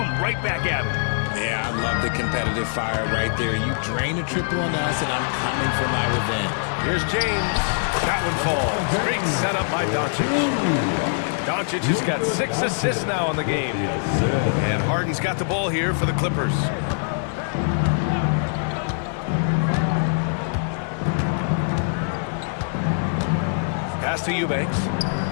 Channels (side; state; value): right; silent; digital silence